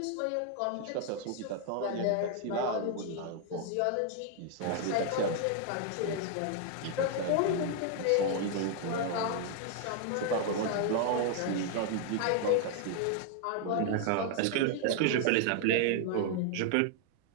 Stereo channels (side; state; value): both; different; correlation 0.00